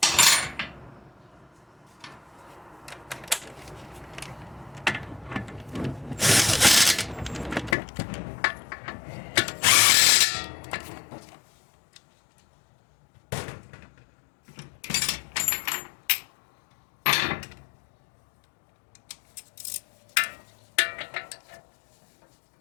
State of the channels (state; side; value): drops out; right; at 7.8 s